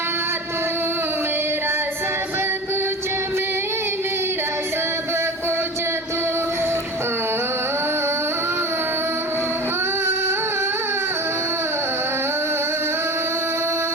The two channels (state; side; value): normal; both; correlation 0.33